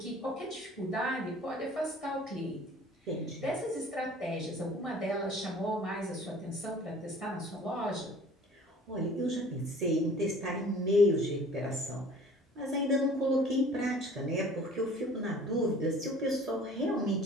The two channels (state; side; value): normal; both; correlation 0.49